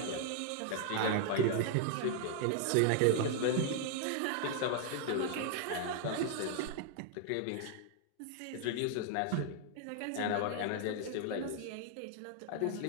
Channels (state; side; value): different; both; correlation 0.00